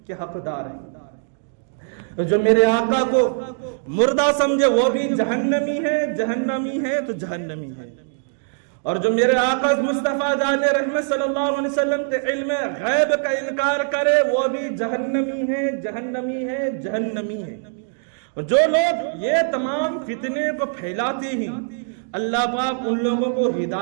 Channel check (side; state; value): left; silent; digital silence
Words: کے حقدار ہے۔ جو میرے آقا کو مردہ سمجھے وہ بھی جہنمی ہے، جہنمی ہے تو جہنمی ہے۔ اور جو میرے آقا مصطفیٰ جان رحمت صلی اللہ علیہ وسلم کے علم غیب کا انکار کرے وہ بھی جہنمی ہے، جہنمی ہے، جہنمی ہے۔ جو لوگ یہ تمام فتنے کو پھیلاتے ہیں اللہ پاک ان لوگوں کو